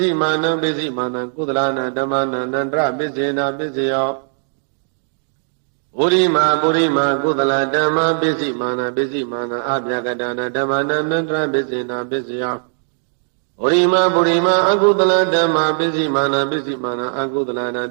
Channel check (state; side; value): silent; left; digital silence